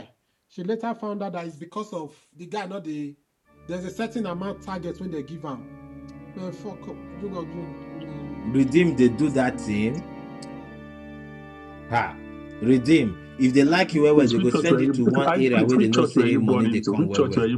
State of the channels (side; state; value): both; identical; correlation 1.00